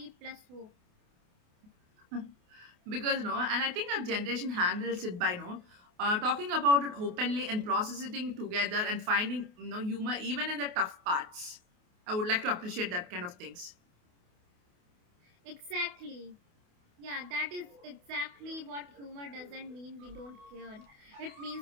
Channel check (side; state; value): left; late; 28 ms